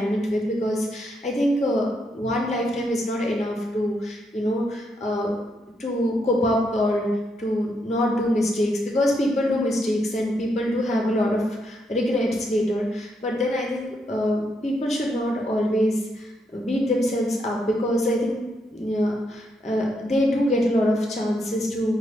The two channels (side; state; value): both; normal; correlation 0.78